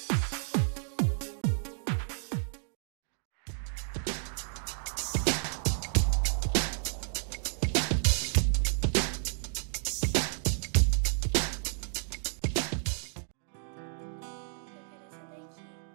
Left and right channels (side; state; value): left; silent; 57 dB below the other